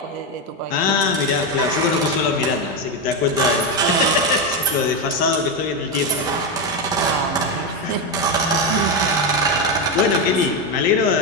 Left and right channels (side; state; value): both; normal; correlation 0.09